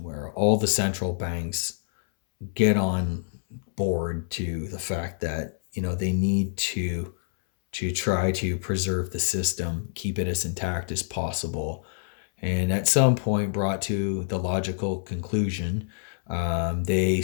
where all the central banks get on board to the fact that they need to try to preserve the system, keep it as intact as possible, and at some point brought to the logical conclusion, they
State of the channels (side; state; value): right; silent; 60 dB below the other